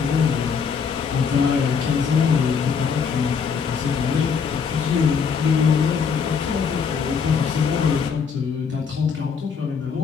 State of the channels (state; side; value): quieter; right; 6.2 dB